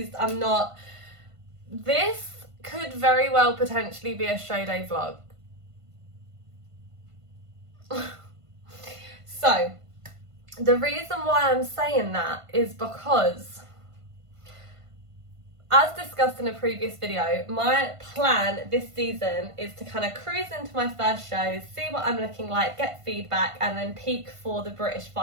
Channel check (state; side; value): late; left; 1.5 ms